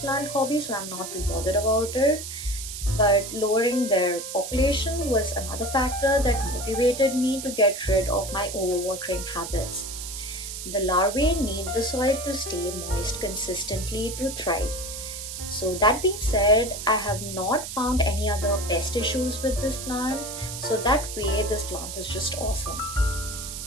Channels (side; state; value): right; noise; hiss, 8 dB below the sound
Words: hobby, so I'm not too bothered about it. But lowering their population was another factor that motivated me to get rid of my overwatering habits. The larvae need the soil to stay moist consistently to thrive. So that being said, I have not found any other pest issues with this plant, so that way this plant is just awesome.